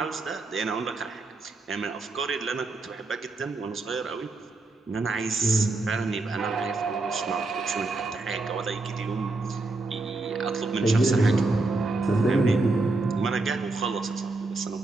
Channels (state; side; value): quieter; left; 3.3 dB